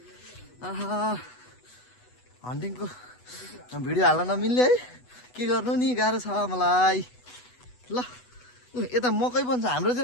हन्टिङको भिडियो हाल्न नमिल्ने है, के गर्नु नि, गाह्रो छ मलाई। ल यता मकै पनि छ, हाम्रोतिर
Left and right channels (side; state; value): right; late; 8.1 ms